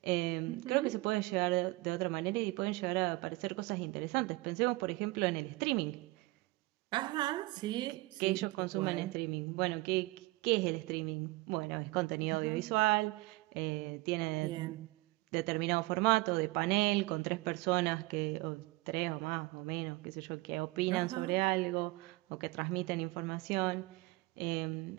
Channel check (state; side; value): quieter; left; 21.8 dB